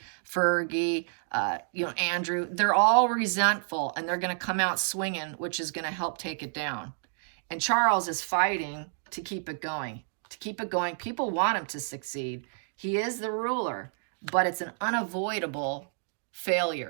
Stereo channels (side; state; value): left; silent; digital silence